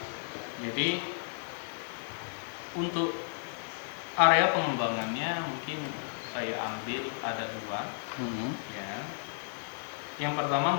Jadi untuk area pengembangannya mungkin saya ambil ada 2. Ya. Yang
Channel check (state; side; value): silent; right; digital silence